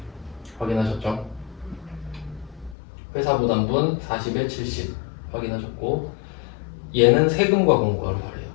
확인하셨죠? 회사 부담분 40에 70 확인하셨고 얘는 세금과 공과로 발해요.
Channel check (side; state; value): right; drops out; at 2.8 s